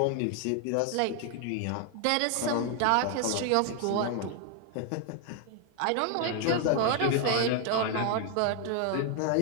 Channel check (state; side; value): different; both; correlation 0.00